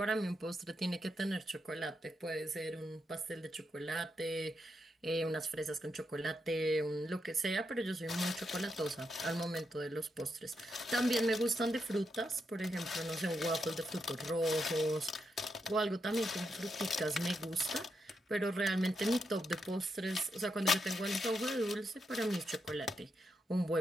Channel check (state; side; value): normal; both; correlation 0.83